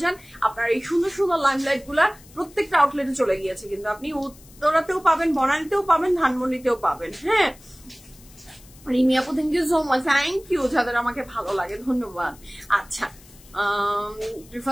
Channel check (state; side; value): noise; left; hiss, 24 dB below the sound